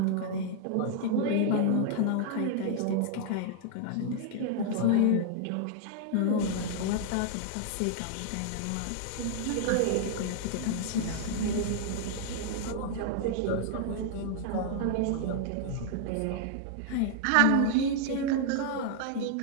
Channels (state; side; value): different; both; correlation -0.01